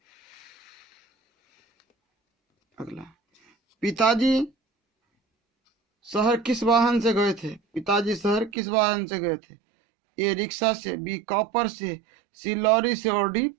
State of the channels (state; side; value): drops out; left; at 8.5 s